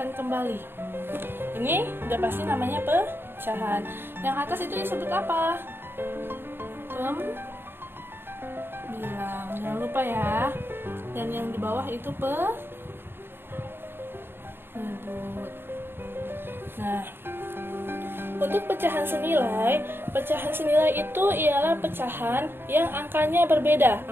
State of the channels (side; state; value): left; late; 0.11 ms